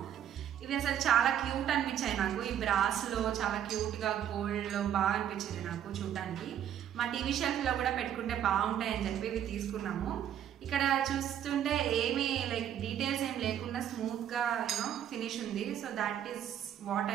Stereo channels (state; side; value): quieter; left; 10.1 dB